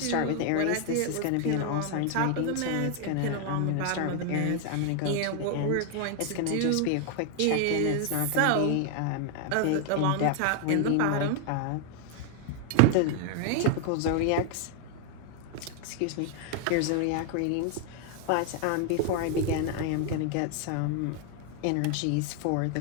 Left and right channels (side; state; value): both; different; correlation 0.00